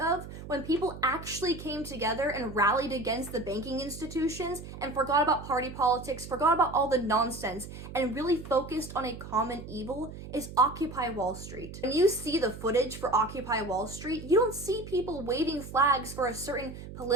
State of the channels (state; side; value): noise; right; hum, 12 dB below the sound